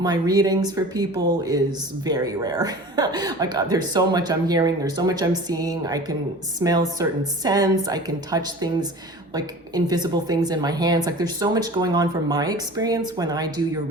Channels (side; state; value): both; normal; correlation 0.39